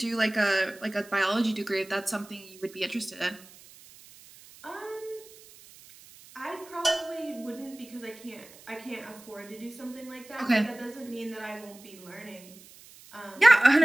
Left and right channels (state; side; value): noise; right; hiss, 21 dB below the sound